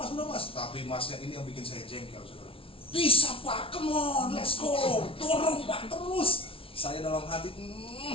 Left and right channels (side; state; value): right; late; 0.26 ms